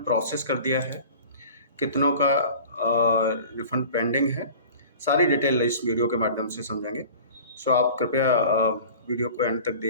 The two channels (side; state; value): both; inverted; correlation -0.42